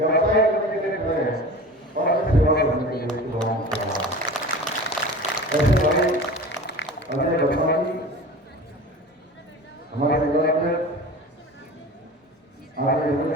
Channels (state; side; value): normal; both; correlation 0.36